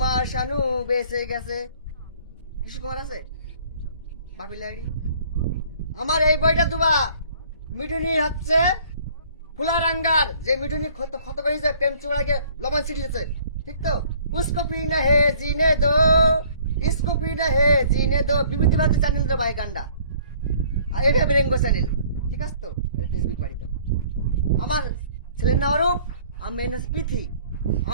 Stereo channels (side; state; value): both; inverted; correlation -0.56